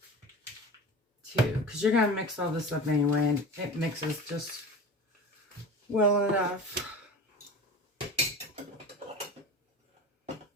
2, because you're going to mix all this up anyway, and it mixes just well enough.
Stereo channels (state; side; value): normal; both; correlation 0.33